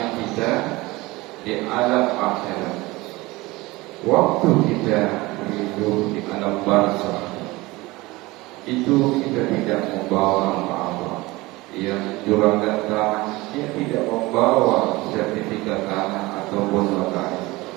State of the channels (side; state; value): left; quieter; 21.3 dB